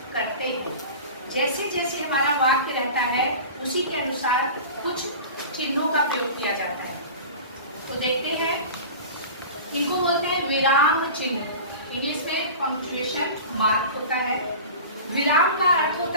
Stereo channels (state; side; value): inverted; both; correlation -0.36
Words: करते हैं। जैसे जैसे हमारा वाक्य रहता है उसी के अनुसार कुछ चिन्हों का प्रयोग किया जाता है। तो देखते हैं, इनको बोलते हैं विराम चिन्ह। इंग्लिश में पंक्चुएशन मार्क होता है। विराम का अर्थ